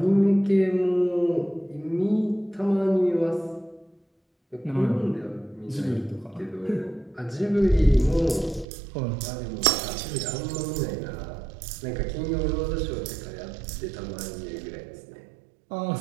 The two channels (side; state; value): left; drops out; at 8.7 s